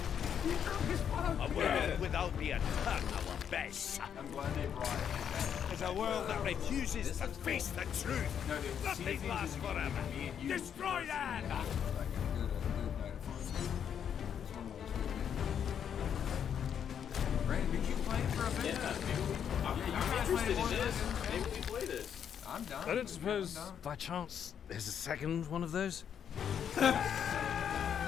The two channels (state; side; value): quieter; right; 8.4 dB